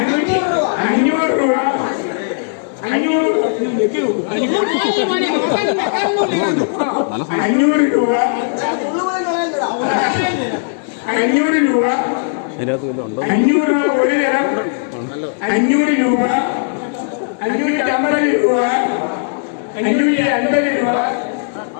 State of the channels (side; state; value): right; silent; digital silence